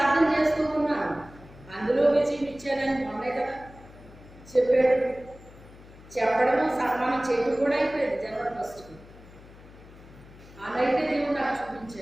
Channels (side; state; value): left; noise; hum, 21 dB below the sound